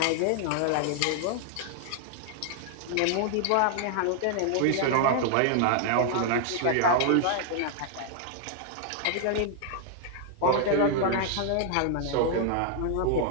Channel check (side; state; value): both; different; correlation 0.00